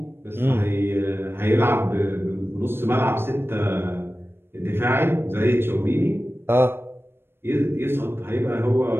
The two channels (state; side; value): late; left; 0.11 ms